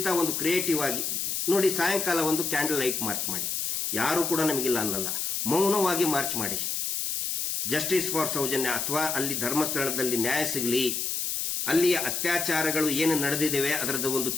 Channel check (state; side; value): noise; left; hiss, 1 dB below the sound